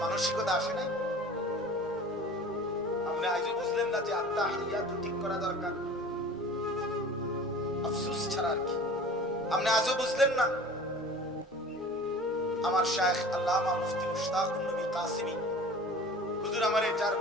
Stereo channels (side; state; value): both; normal; correlation 0.42